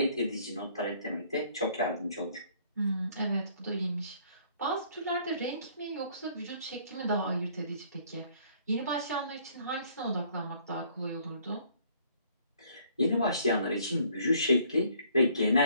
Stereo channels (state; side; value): inverted; both; correlation -0.60